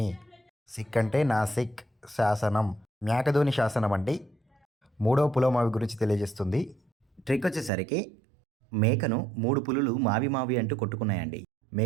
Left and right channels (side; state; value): left; drops out; at 7.7 s